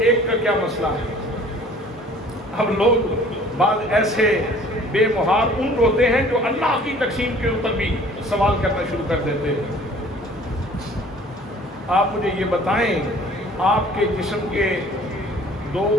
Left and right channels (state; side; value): normal; both; correlation 0.51